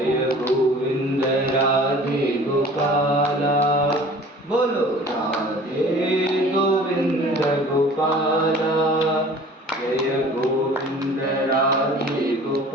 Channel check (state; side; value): normal; both; correlation 0.46